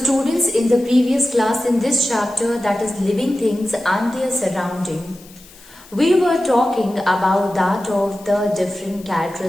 in the previous class in this chapter, that is living things and their surrounding, we were talking about that of the different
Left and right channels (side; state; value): left; noise; hiss, 23 dB below the sound